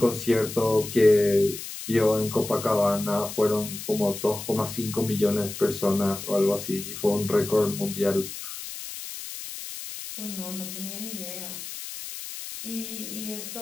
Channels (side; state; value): left; noise; hiss, 10 dB below the sound